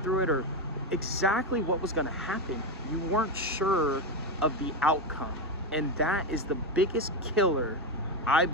through it, or exactly what was gonna happen. You weren't sure of the outcome. And that is the biggest killer, I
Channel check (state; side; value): normal; both; correlation 0.12